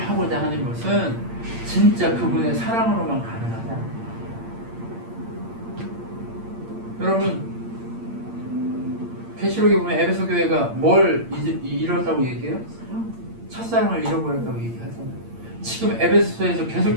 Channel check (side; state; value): left; late; 8.7 ms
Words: 하는 것은 진짜 그분의 사랑으로만 가능하다. 여러분, 계시록에 보면 에베소 교회가 뭘 잃었다고 얘기해요? 첫사랑을 잃어버렸다고 얘기하잖아요. 지금 에베소에서